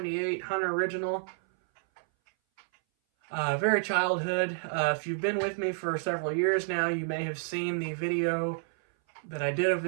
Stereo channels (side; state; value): left; silent; 58 dB below the other